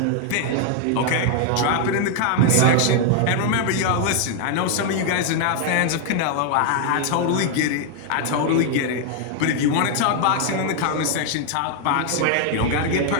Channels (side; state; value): both; different; correlation 0.00